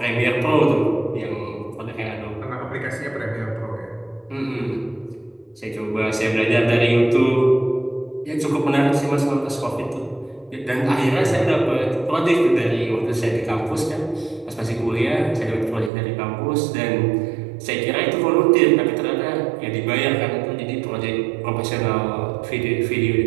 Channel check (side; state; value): left; drops out; at 15.9 s